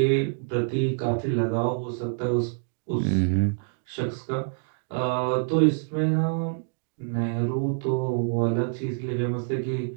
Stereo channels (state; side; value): silent; left; digital silence